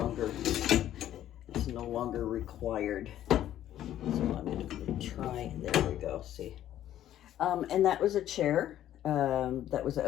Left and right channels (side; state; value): right; quieter; 12.0 dB